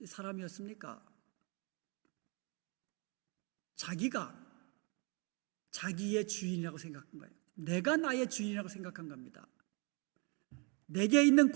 사람이었습니까? 자기가 자기의 주인이라고 생각한 거예요. 내가 나의 주인이라고 생각한 겁니다. 내게 있는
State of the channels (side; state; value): left; quieter; 32.9 dB